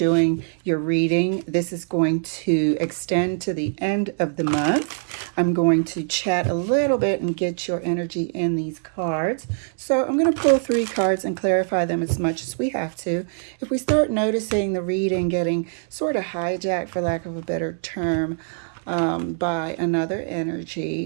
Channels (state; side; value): silent; left; 63 dB below the other